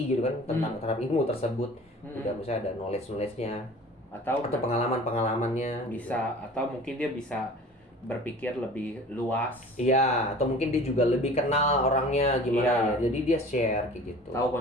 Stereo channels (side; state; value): both; normal; correlation 0.43